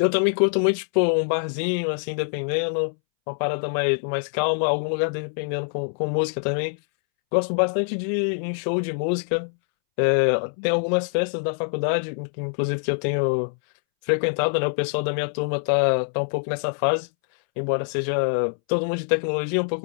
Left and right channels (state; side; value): silent; right; 62 dB below the other